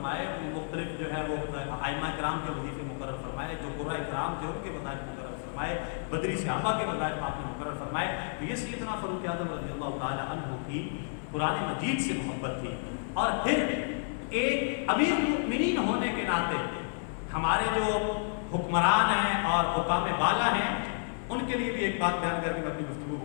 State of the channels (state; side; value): silent; right; digital silence